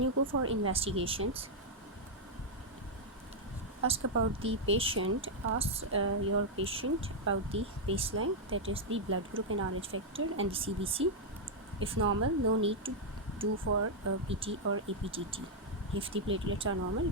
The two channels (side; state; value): both; normal; correlation -0.03